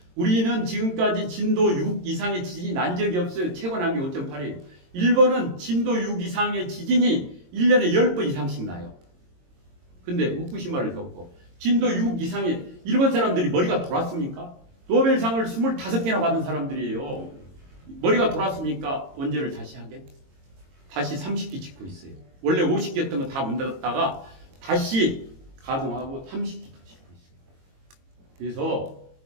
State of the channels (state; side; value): late; left; 22 ms